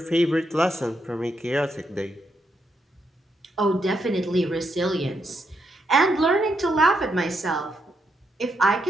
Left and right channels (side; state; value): both; normal; correlation 0.80